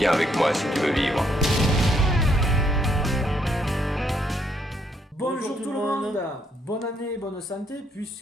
avec moi si tu veux vivre. Bonjour tout le monde, bonne année, bonne santé,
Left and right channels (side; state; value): both; normal; correlation 0.71